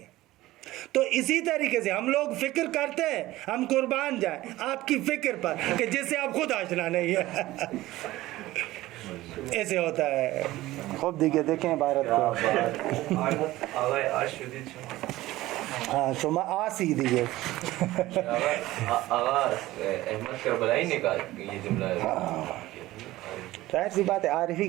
تو اسی طریقے سے ہم لوگ فکر کرتے ہیں ہم قربان جائیں آپ کی فکر پر کہ جس سے آپ خود آشنا نہیں ہے. ایسے ہوتا ہے. خوب دیکھیں بھارت کو. ہاں شما آسی دیئے. آغا احمد کربلائی نے کہا یہ جملہ ہے. ظاہر سی بات ہے عارف ہی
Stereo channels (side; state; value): left; quieter; 17.0 dB